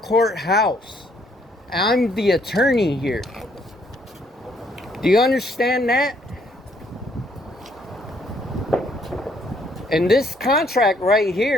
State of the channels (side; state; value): both; normal; correlation 0.67